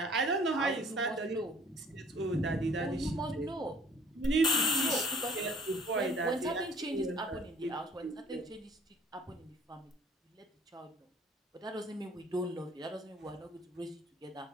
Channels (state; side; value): normal; both; correlation 0.54